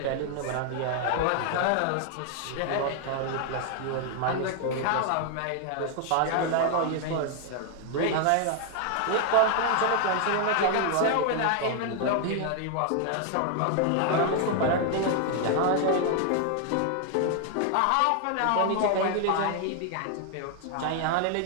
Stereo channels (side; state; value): both; different; correlation 0.00